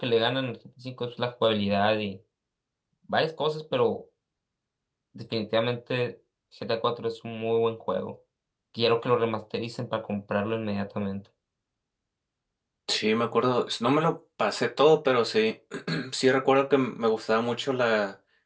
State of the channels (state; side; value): identical; both; correlation 1.00